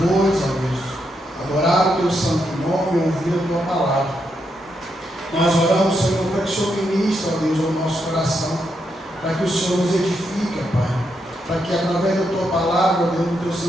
ó Deus, adorar o teu santo nome e ouvir a tua palavra. Nós oramos, Senhor, para que o Senhor ministre, ó Deus, ao nosso coração, para que o Senhor nos edifique, Pai, para que através da tua palavra, ó Deus, do teu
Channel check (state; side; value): normal; both; correlation 0.81